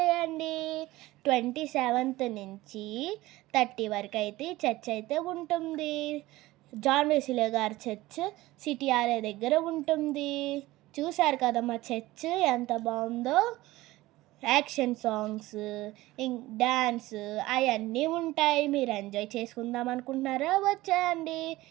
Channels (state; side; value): quieter; left; 18.1 dB